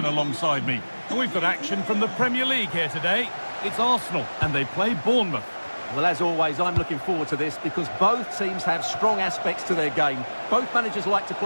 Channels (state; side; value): inverted; both; correlation -1.00